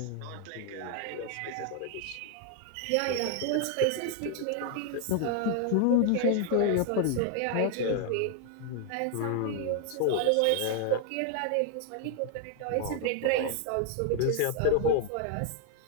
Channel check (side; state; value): both; different; correlation 0.00